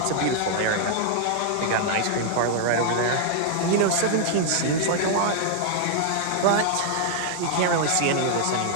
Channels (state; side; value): different; both; correlation -0.01